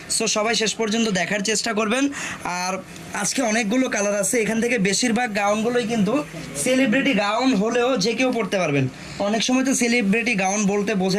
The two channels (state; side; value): identical; both; correlation 1.00